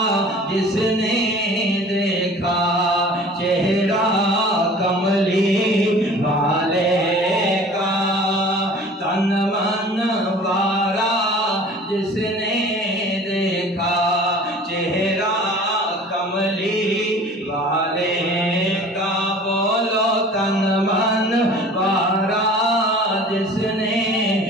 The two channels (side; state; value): both; normal; correlation 0.45